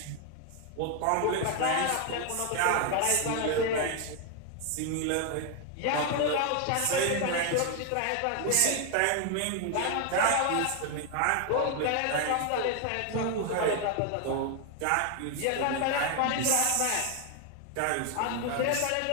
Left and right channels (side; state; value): both; different; correlation 0.01